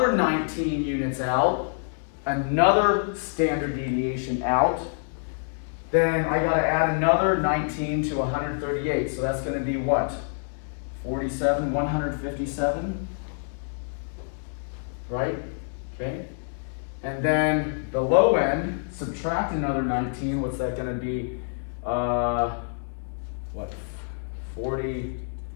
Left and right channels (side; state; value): right; silent; digital silence